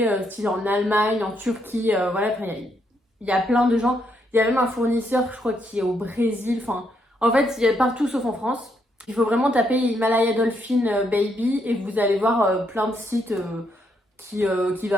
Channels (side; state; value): both; normal; correlation 0.75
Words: style en Allemagne, en Turquie, voilà, il y a plein de gens. Il y a même un fournisseur, je crois, qui est au Brésil. Enfin, en fait, il y a partout sauf en France. Il faut vraiment taper Himalaya Dolphin Baby et vous allez voir plein de sites qui